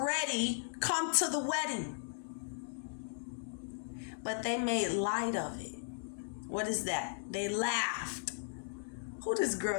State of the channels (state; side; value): silent; right; digital silence